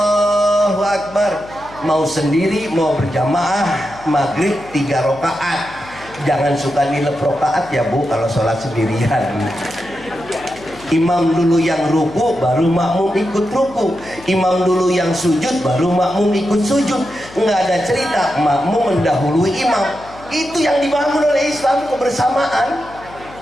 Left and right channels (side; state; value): left; noise; hum, 20 dB below the sound